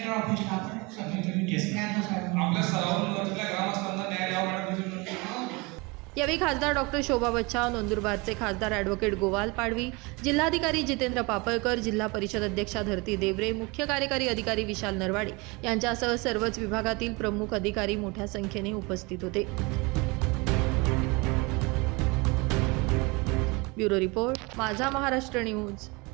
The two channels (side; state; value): left; quieter; 26.5 dB